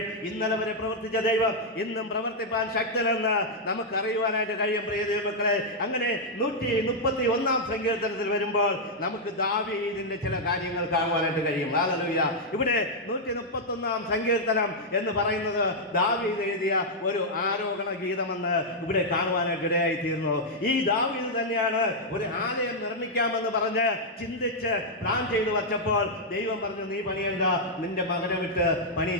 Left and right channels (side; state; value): both; normal; correlation -0.04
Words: ഇന്നലെ വരെ പ്രവർത്തിച്ച ദൈവം ഇന്നും പ്രവർത്തിപ്പാൻ ശക്തനെന്ന് നമുക്ക് അറിയുവാനായിട്ട് കഴിയും. പ്രിയ ദൈവമക്കളെ, അങ്ങനെ 131-ാം സങ്കീർത്തനത്തിൽ വരുമ്പോൾ നമുക്ക് ദാവീദിന്റെ ചില കാര്യങ്ങൾ കാണുവാനായിട്ട് കഴിയും. ഹല്ലേലൂയ. ഇവിടെ 131-ാം സങ്കീർത്തനം എന്ന് പറയുന്നത് ദാവീദ് എഴുതിയ ഒരു ആരോഹണ ഗീതമെന്ന് ഇവിടെ കാണുവാനായിട്ട് ഇടയായി തീർന്നു. ഈ ദാവീദ് തന്നെയാണ് ഒരു ആലയം നിർമ്മിക്കാമെന്ന് പറഞ്ഞ് ചിന്തിച്ച് പ്ലാൻ ചെയ്തു വച്ചപ്പോൾ ദൈവം പറഞ്ഞു, നീ പണിയണ്ട, നിന്റെ മകനെ വിട്ട്